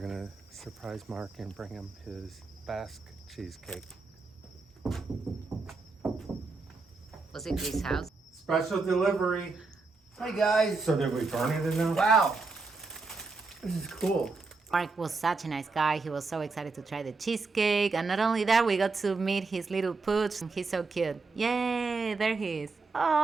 surprise Mark and bring him his Basque cheesecake. Was it his house? Special delivery. Hi guys. So did we burn it in there? Wow. This is cool. Mark was such a nice guy. He was so excited to try the cheesecake. And not only that, we got to meet his little pooch. He's so cute. Yay, there he is.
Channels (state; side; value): quieter; left; 4.0 dB